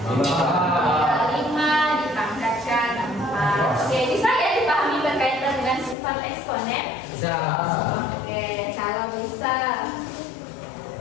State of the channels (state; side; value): drops out; right; at 6.0 s